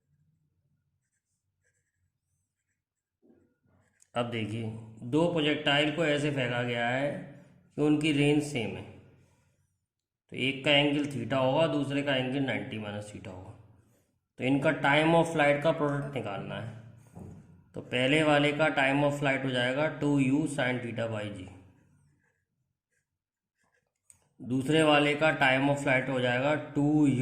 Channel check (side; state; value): both; identical; correlation 1.00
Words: अब देखिए, 2 प्रोजेक्टाइल को ऐसे फेंका गया है कि उनकी रेंज सेम है। तो एक का एंगल थीटा होगा, दूसरे का एंगल 90 - थीटा होगा। तो इनका टाइम ऑफ फ्लाइट का प्रोडक्ट निकालना है। तो पहले वाले का टाइम ऑफ फ्लाइट हो जाएगा 2u sin θ/g। दूसरे वाले का टाइम ऑफ फ्लाइट हो जाएगा